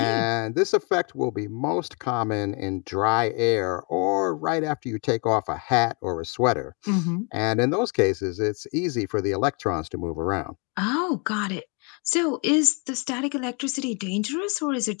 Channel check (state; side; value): quieter; right; 34.3 dB